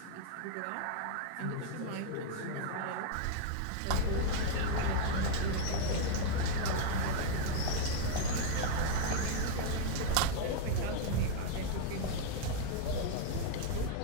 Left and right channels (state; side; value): different; both; correlation 0.00